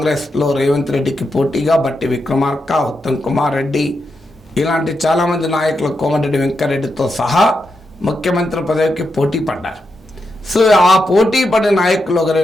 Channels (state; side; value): normal; both; correlation 0.85